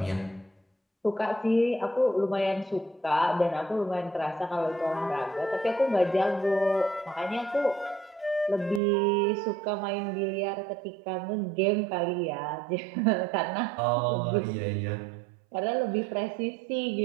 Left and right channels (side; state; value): left; drops out; at 8.8 s